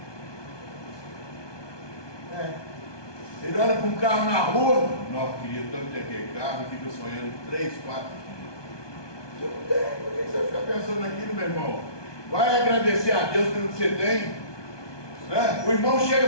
Ele olha para um carro na rua, não, queria tanto ter aquele carro, e fica sonhando 3, 4 dias. Você não tem, por que você fica pensando naquilo, meu irmão? Vai agradecer a Deus pelo que você tem. O irmão chega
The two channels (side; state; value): right; late; 1.2 ms